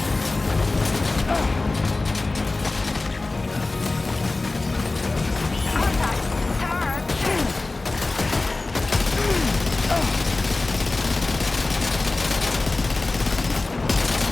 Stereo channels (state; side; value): quieter; right; 3.2 dB